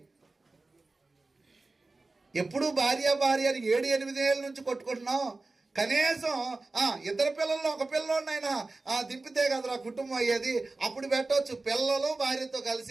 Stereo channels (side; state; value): left; quieter; 3.4 dB